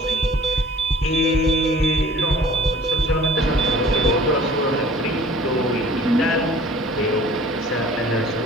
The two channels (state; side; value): normal; both; correlation 0.50